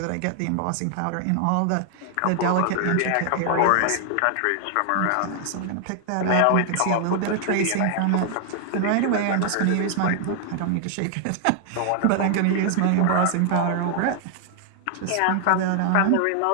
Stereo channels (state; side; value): different; both; correlation 0.00